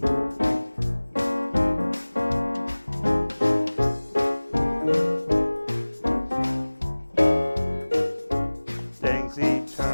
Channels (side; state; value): both; inverted; correlation -1.00